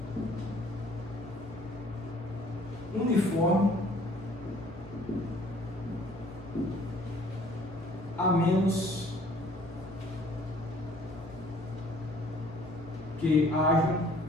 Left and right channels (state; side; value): normal; both; correlation 0.56